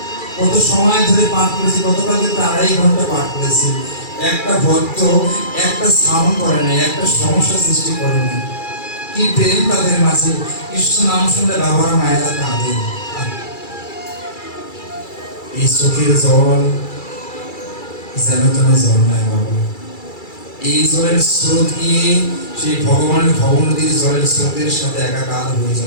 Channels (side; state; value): right; late; 2.3 ms